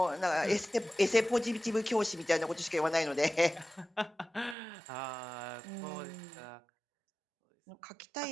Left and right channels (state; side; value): drops out; left; at 4.5 s